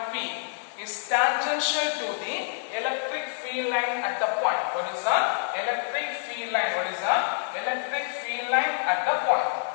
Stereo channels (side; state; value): right; silent; 60 dB below the other